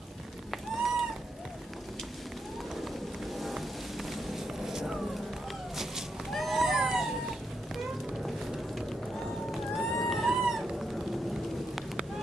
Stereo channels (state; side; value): normal; both; correlation 0.82